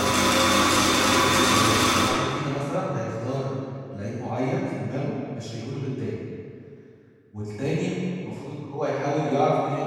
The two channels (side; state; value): both; identical; correlation 1.00